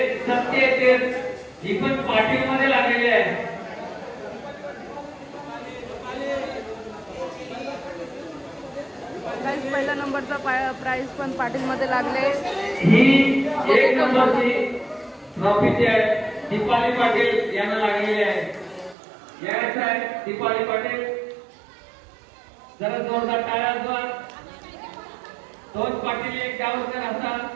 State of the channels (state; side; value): drops out; left; at 18.9 s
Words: सत्य येते ही पण पाटील मध्ये लागलेली आहे. पहिला नंबरचा प्राइज पण पाटील मध्ये लागले. ही 1 नंबरची ट्रॉफी जी आहे दीपाली पाटील यांना लागलेली आहे. यायचं आहे दीपाली पाटील. जरा जोरदार टाळ्या वाजवा. 2 पाटील 1 गावकर असा